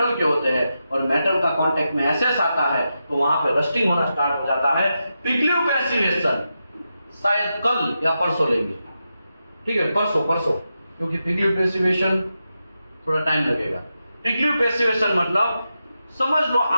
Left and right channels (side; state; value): both; inverted; correlation -0.88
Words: के होते हैं और मेटल का कांटेक्ट में एसेस आता है तो वहां पे रस्टिंग होना स्टार्ट हो जाता है। पिग्लिव पैसिवेशन शायद कल या परसों लेंगे। ठीक है, परसों, क्योंकि पिग्लिव पैसिवेशन थोड़ा टाइम लगेगा। पिग्लिव पैसिवेशन मतलब समझ लो